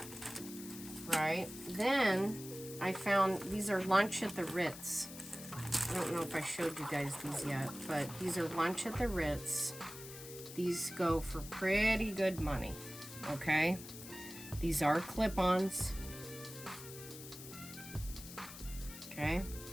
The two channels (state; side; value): noise; left; hiss, 13 dB below the sound